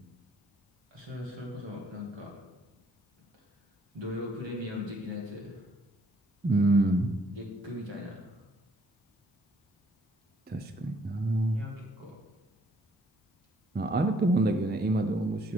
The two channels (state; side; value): normal; both; correlation 0.66